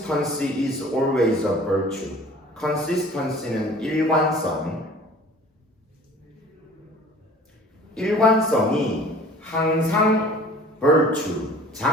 is always a virtue. consistency는 일관성이 항상 virtue,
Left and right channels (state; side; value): normal; both; correlation 0.47